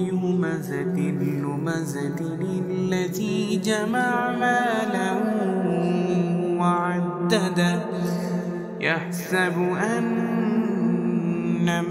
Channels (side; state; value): both; identical; correlation 1.00